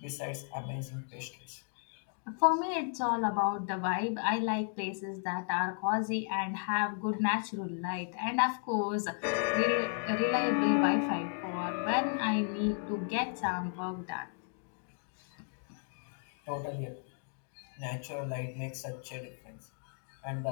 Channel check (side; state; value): right; silent; 55 dB below the other